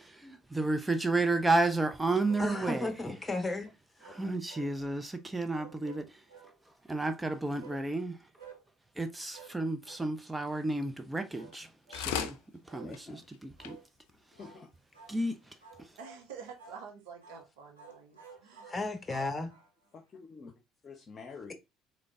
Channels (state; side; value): normal; both; correlation 0.84